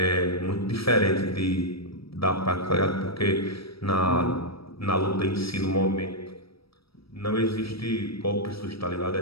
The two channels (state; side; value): late; right; 0.76 ms